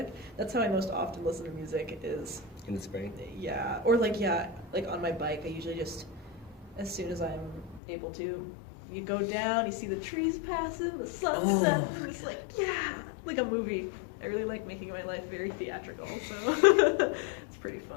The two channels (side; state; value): right; drops out; at 7.8 s